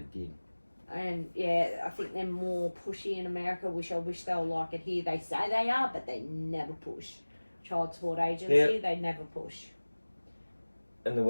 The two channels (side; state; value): both; inverted; correlation -1.00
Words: did. And yeah, I think they're more pushy in America, which I wish they were like it here. They say they are, but they never push. Child support agency, they never push. And the